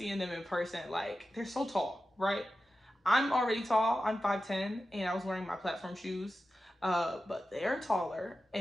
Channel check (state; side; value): normal; both; correlation 0.92